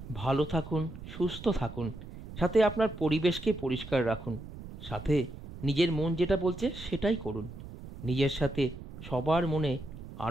ভালো থাকুন, সুস্থ থাকুন, সাথে আপনার পরিবেশকে পরিষ্কার রাখুন, সাথে নিজের মন যেটা বলছে সেটাই করুন, নিজের সাথে সবার মনে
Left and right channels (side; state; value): right; noise; rumble, 13 dB below the sound